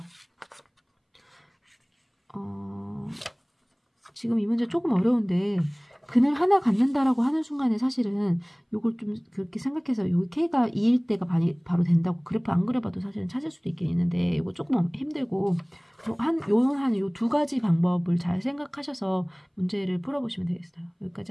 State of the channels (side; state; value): both; identical; correlation 1.00